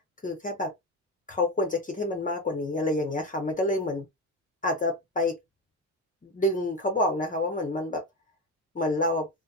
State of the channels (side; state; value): both; normal; correlation 0.18